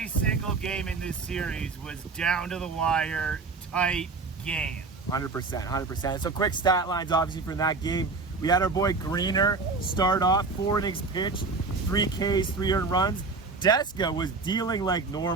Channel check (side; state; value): left; quieter; 4.1 dB